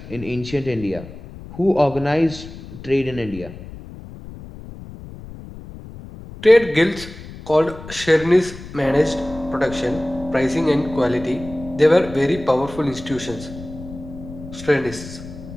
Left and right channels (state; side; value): noise; left; rumble, 14 dB below the sound